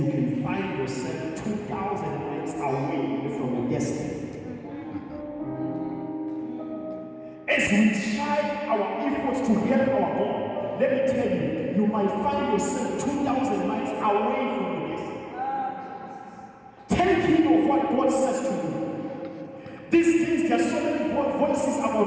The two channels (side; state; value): both; identical; correlation 1.00